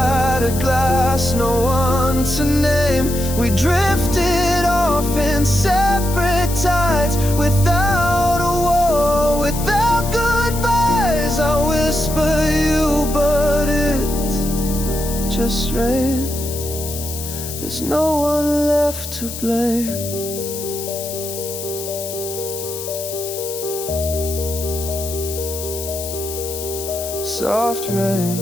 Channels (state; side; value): noise; left; hiss, 9 dB below the sound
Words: glass, no one to name. We drifted off in separate tides, without a war, without goodbyes. I whisper you, but it's just rain. There's no one left to blame. Soft rain